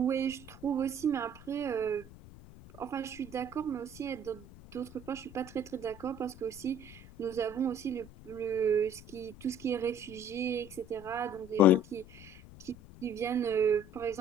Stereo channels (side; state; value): left; noise; rumble, 18 dB below the sound